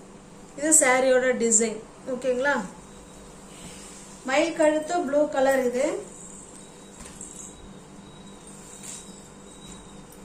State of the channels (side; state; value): both; identical; correlation 1.00